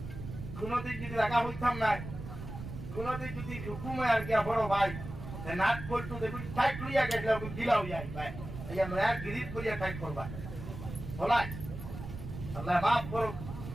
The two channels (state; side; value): noise; right; rumble, 9 dB below the sound